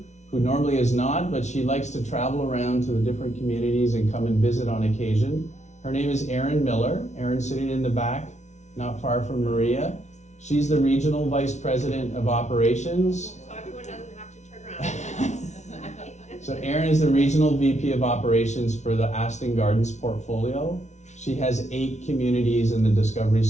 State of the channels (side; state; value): right; late; 0.33 ms